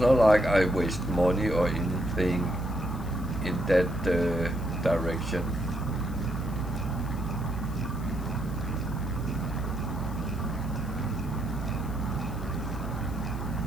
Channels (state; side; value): noise; left; hiss, 22 dB below the sound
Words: like I waste money or anything in that direction.